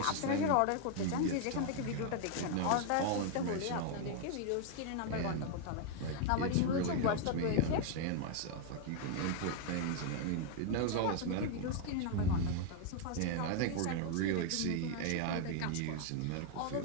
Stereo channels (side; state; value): both; different; correlation 0.00